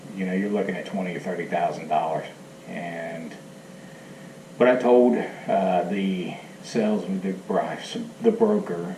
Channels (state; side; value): identical; both; correlation 1.00